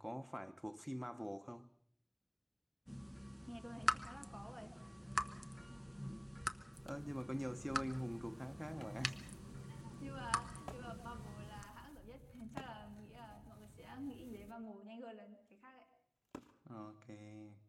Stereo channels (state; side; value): identical; both; correlation 1.00